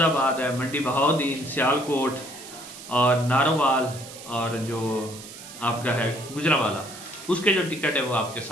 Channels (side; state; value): right; noise; hiss, 15 dB below the sound